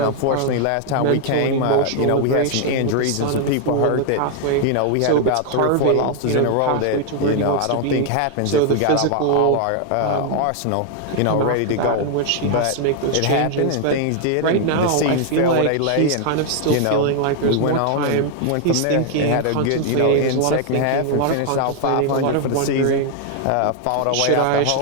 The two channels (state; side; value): different; both; correlation 0.00